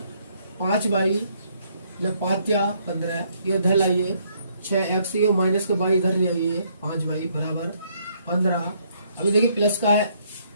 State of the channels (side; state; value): both; inverted; correlation -0.69